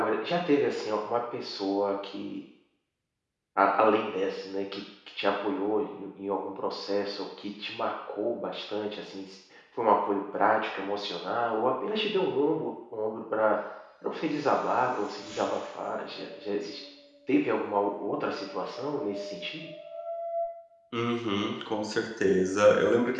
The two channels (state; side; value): identical; both; correlation 1.00